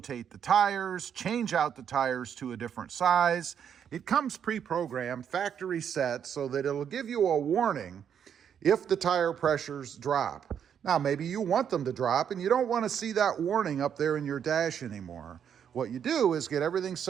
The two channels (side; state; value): left; quieter; 8.3 dB